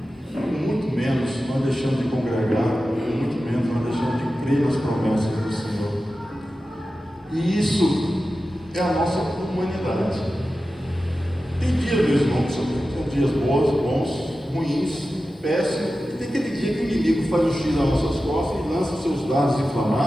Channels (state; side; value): normal; both; correlation 0.93